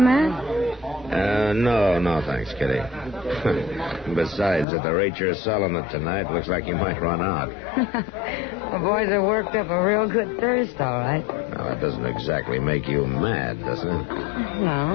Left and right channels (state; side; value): drops out; right; at 4.7 s